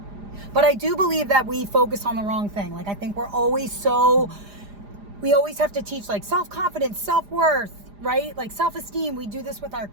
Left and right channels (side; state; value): left; late; 4.9 ms